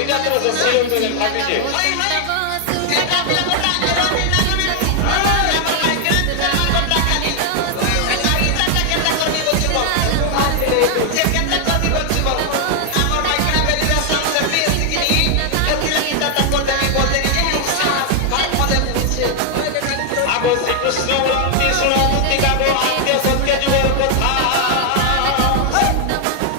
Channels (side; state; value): both; different; correlation 0.00